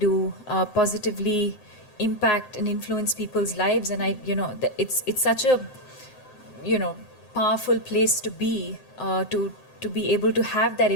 positively impact and influence people's lives. And it's such a, powerful place to be, to be able to have that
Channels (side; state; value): right; late; 7.7 ms